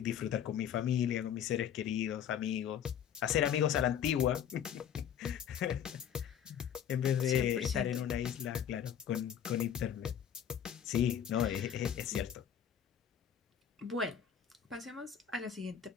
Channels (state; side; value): quieter; right; 9.1 dB